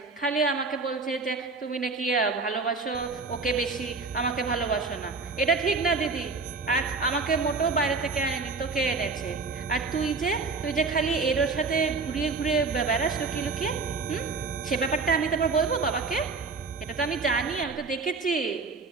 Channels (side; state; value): left; quieter; 4.2 dB